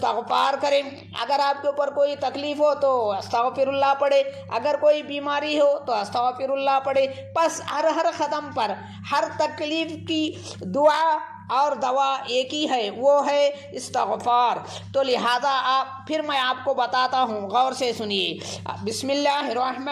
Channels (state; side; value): identical; both; correlation 1.00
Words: کریں، اگر آپ کے اوپر کوئی تکلیف ہو تو استغفر اللہ پڑھے، اگر کوئی بیماری ہو تو استغفر اللہ پڑھے۔ بس ہر قدم پر ہر تکلیف کی دعا اور دوا ایک ہی ہے، وہ ہے استغفار۔ تو لہذا پھر میں آپ کو بتاتا ہوں، غور سے سنیے۔ بسم اللہ